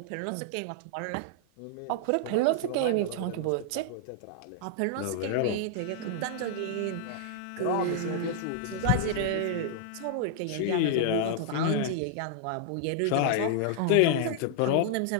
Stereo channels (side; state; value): both; different; correlation -0.01